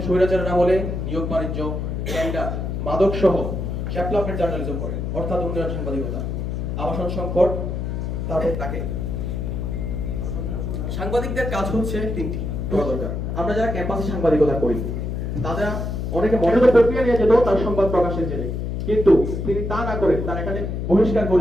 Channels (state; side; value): noise; left; hum, 3 dB below the sound